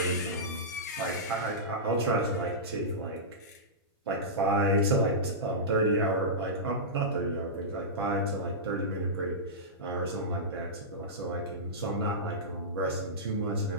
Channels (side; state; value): both; normal; correlation -0.16